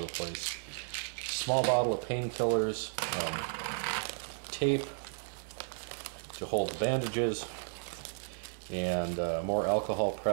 the place. Small bottle of painkillers, tape to hold the bandages, and more alcohol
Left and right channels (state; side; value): silent; left; digital silence